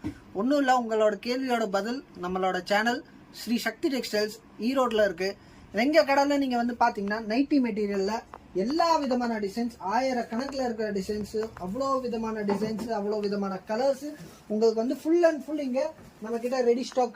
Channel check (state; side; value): identical; both; correlation 1.00